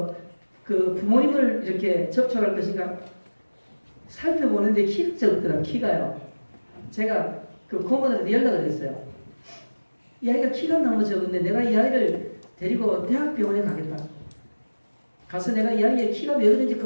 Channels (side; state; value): both; inverted; correlation -1.00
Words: 그 부모님을 이렇게 접촉할 것인가 살펴보는데 키가 적더라고요. 키가요. 제가 그 고모들한테 연락을 했어요. 이 아이가 키가 너무 적은데 내가 이 아이를 데리고 대학병원에 가겠다. 가서 내가 이 아이의 키가 몇 인지